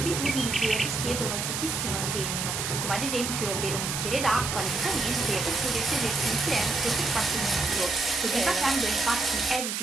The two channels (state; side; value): noise; right; hiss, 2 dB below the sound